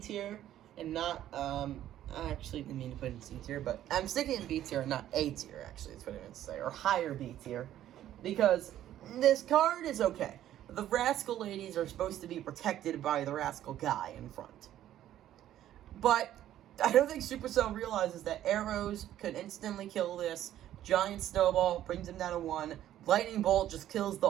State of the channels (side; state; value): left; quieter; 12.2 dB